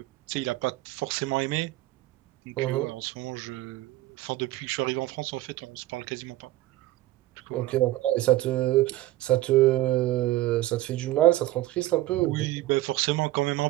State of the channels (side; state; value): left; quieter; 16.4 dB